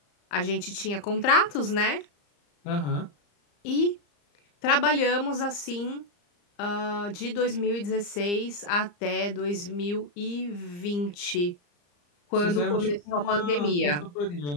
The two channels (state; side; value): late; right; 34 ms